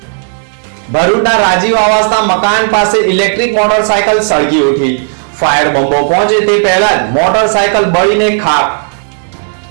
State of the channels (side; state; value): left; silent; digital silence